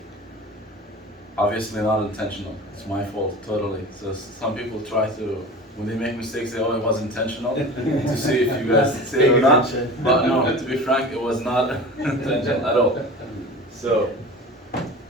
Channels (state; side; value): normal; both; correlation 0.35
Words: Obviously not intentional, it's my fault, totally. So some people try to, when they make mistakes, they it was intentional, to see if you guys say it or not. But no, to be frank, it was not intentional at all. So,